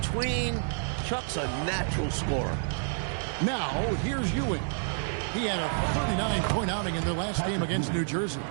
Chuck's a natural scorer. Now, here's Ewing. He had a 39-point outing in their last game against New Jersey.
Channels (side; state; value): left; silent; digital silence